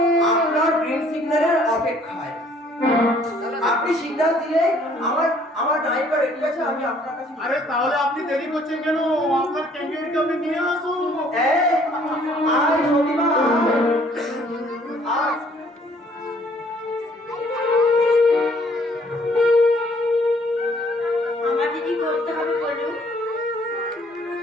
আপনার গ্রিন সিগন্যালের অপেক্ষায়। আপনি সিগন্যাল দিলে আমার নায়িকা রেডি আছে, আমি আপনার কাছে। আরে তাহলে আপনি দেরি করছেন কেন? আপনার ক্যান্ডিডেটকে আপনি নিয়ে আসুন। আয় সতীমা, আয়। আমার দিদি করতে হবে বলুন।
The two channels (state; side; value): normal; both; correlation 0.60